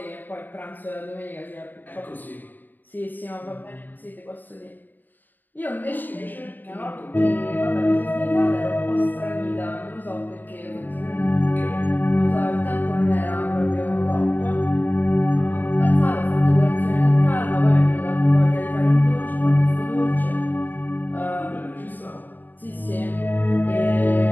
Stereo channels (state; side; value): late; right; 0.089 ms